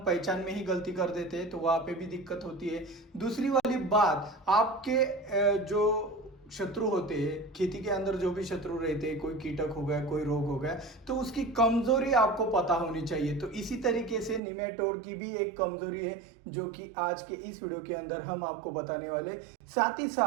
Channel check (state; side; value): drops out; left; at 14.4 s